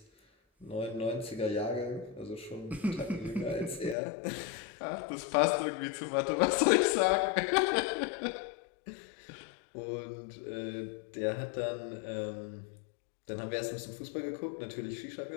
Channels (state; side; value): drops out; right; at 4.0 s